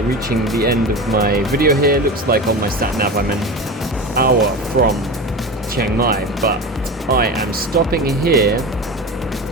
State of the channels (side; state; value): both; normal; correlation 0.28